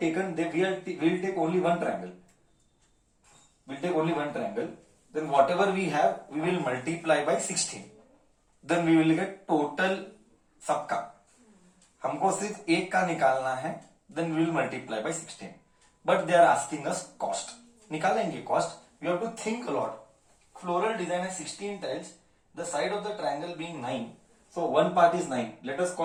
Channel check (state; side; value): identical; both; correlation 1.00